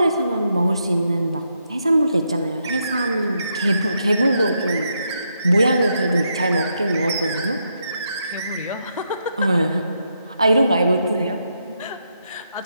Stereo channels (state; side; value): inverted; both; correlation -0.80